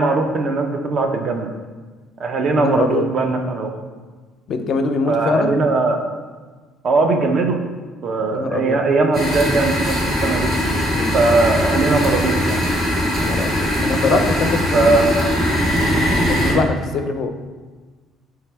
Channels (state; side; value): normal; both; correlation 0.68